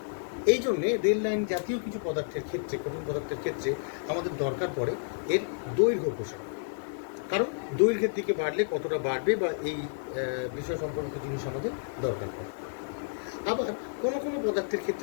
এই জন্যে রেল লাইন জাতীয় কিছু পদার্থের ক্ষেত্রে, কঠিন পদার্থের ক্ষেত্রে আমাদের দরকার পড়ে এর দৈর্ঘ্য প্রসারণ। কারণ দৈর্ঘ্যের দিকে বাড়লে কতটা বাড়বে বা এই বিষয় সম্পর্কিত জিনিস আমাদের দরকার পড়ে। আবার কোনো কোনো পদার্থের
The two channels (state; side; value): silent; right; digital silence